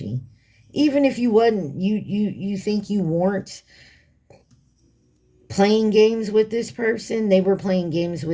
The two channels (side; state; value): both; identical; correlation 1.00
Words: Even if you wasn't, you think you weren't playing games with this person, they were playing games